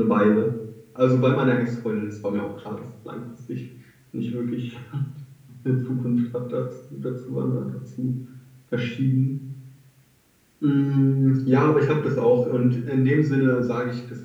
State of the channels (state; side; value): identical; both; correlation 1.00